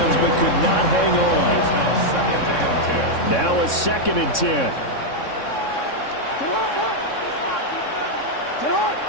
but could not hang on. Now a 2nd and 10.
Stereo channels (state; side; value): late; right; 3.6 ms